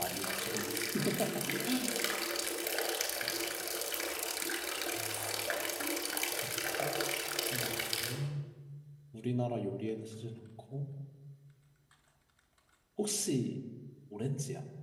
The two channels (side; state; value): both; identical; correlation 1.00